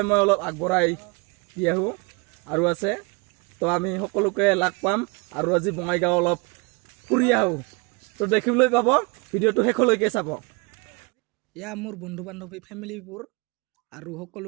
মই অলপ আগবঢ়াই দি আহোঁ আৰু আছে তো আমি সকলোকে লগ পাম আৰু আজি বঙাইগাঁও অলপ ফুৰি আহোঁ। তো দেখিবলৈ পাব, ভিডিঅ'টো শেষলৈকে চাব। এয়া মোৰ বন্ধু বান্ধৱী ফেমিলিবোৰ আৰু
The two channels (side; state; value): left; quieter; 30.1 dB